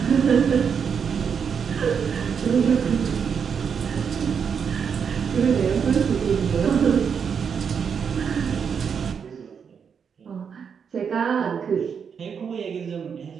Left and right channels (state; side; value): quieter; left; 6.8 dB